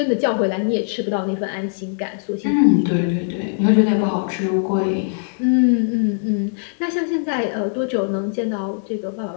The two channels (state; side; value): silent; right; digital silence